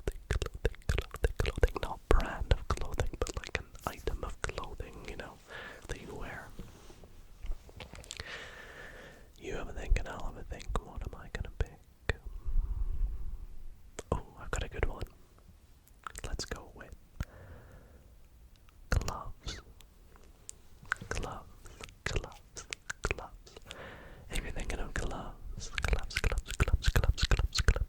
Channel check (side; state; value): both; identical; correlation 1.00